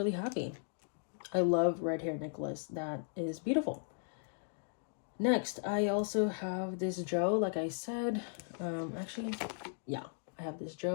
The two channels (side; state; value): right; silent; digital silence